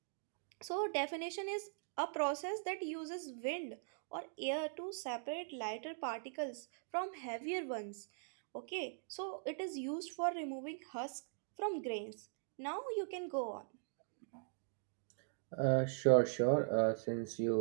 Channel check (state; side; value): silent; left; digital silence